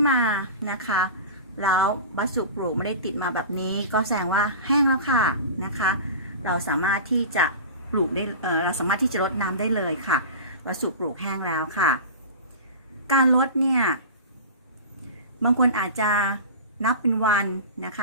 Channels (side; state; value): both; inverted; correlation -0.32